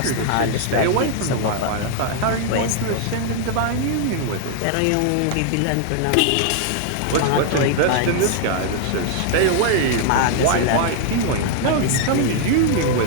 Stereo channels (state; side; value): different; both; correlation 0.00